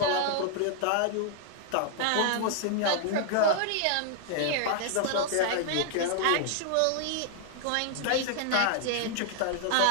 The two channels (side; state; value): both; different; correlation -0.01